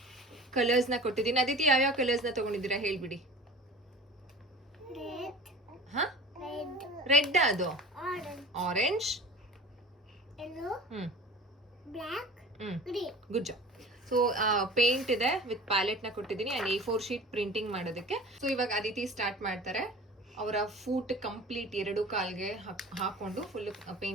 ಕಲರ್ಸ್ನ ಕೊಟ್ಟಿದ್ದೀನಿ. ಅದಿತಿ ಯಾವ್ಯಾವ ಕಲರ್ಸ್ನ ತೊಗೊಂಡಿದ್ದೀರಾ ಹೇಳ್ಬಿಡಿ. ಹಾಂ, ರೆಡ್, ಅದು orange, good job. So paint ಇದೆ ವಿತ್ ಪ್ಯಾಲೆಟ್ನ ಕೊಟ್ಟಿದ್ದೀನಿ. ಆ್ಯಂಡ್ A4 ಶೀಟ್ ಪ್ರಿಂಟಿಂಗ್ ಮಾಡೋದಕ್ಕೆ. ಸೊ ಇವಾಗ ಅದಿತಿ ಸ್ಟಾರ್ಟ್ ಮಾಡ್ತಾರೆ. ಅವರ ಫೂಟ್ ಕಂಪ್ಲೀಟ್ 2 ಕಾಲ್ಗೆ ಹಾಕೊಂಡು ಫುಲ್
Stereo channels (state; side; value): normal; both; correlation 0.39